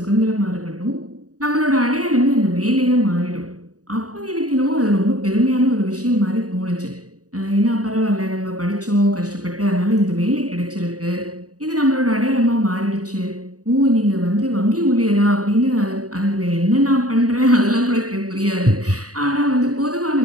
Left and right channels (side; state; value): left; late; 0.67 ms